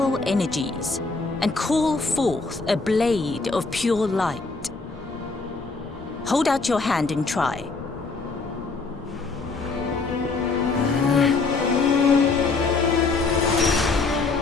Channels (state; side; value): quieter; right; 4.1 dB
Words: energies and call forth a blade of pure light. Hold out your hand and try.